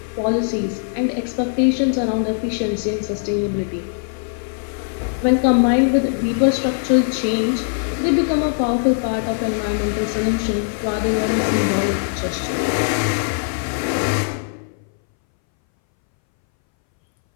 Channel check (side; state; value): right; silent; 62 dB below the other